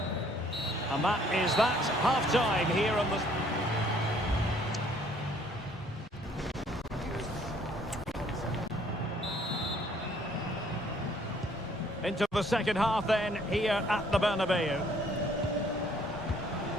And that is that. Half-time here on the... Into the second half then, here at the Bernabeu.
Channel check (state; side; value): normal; both; correlation 0.61